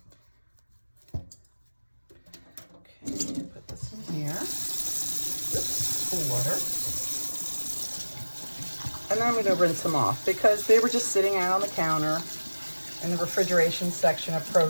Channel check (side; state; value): both; inverted; correlation -1.00